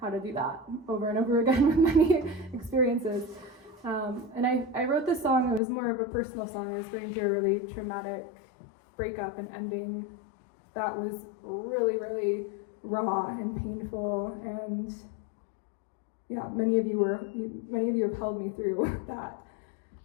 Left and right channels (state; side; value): drops out; right; at 5.6 s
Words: how to do that over and over again with many experiences. And I wrote this song. It was more of a personal song. I was going through a really traumatic breakup and ending that was really, really raw and painful. And yeah, many of you have held me through that